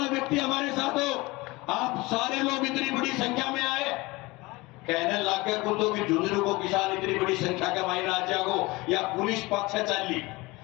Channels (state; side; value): quieter; right; 22.5 dB